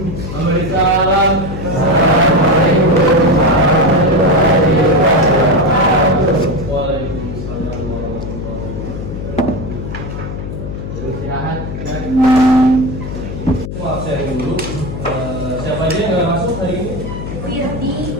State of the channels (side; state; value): left; noise; hum, 7 dB below the sound